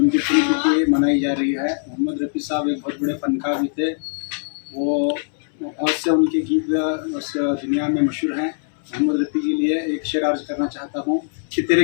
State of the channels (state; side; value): silent; right; 65 dB below the other